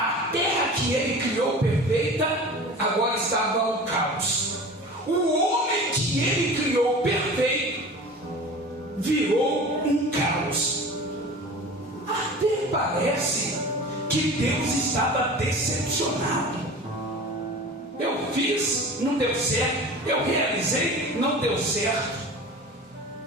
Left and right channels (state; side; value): normal; both; correlation 0.37